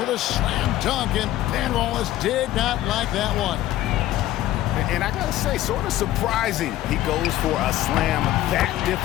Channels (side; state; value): right; quieter; 14.2 dB